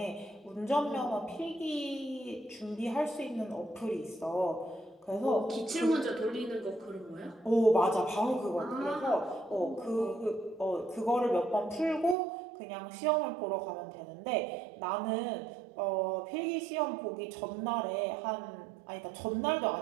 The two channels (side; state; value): left; drops out; at 12.2 s